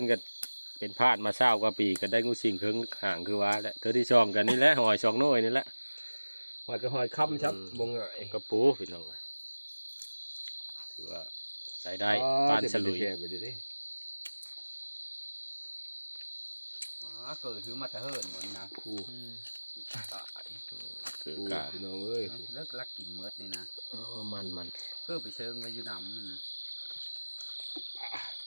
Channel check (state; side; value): inverted; both; correlation -1.00